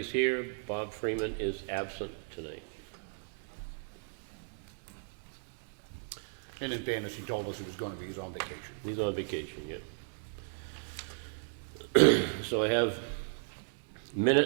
here. Bob Freeman is absent tonight. And in fairness, he told us he was going to be, he's on vacation. He's on vacation, yeah. So I have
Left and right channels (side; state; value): left; silent; digital silence